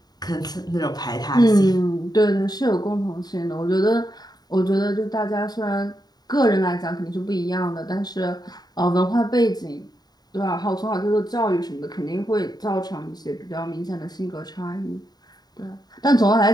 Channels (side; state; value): right; late; 0.19 ms